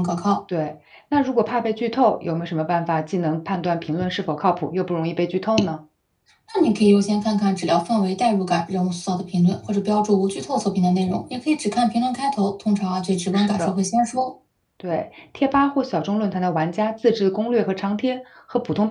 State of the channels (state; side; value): identical; both; correlation 1.00